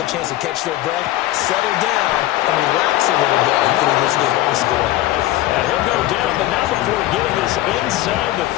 a chance to catch their breath, settle down, and relax a little bit through this game up the score. And he'll go down, but not before getting this inside the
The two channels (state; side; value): quieter; right; 15.5 dB